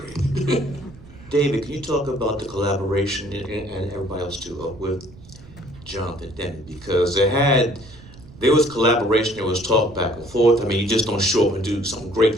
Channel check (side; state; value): right; noise; rumble, 20 dB below the sound